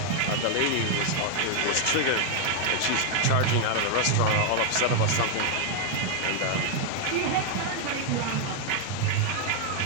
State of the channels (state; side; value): different; both; correlation 0.00